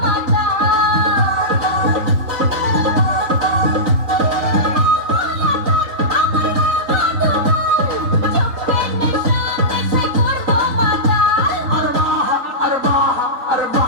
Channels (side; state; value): left; late; 4.0 ms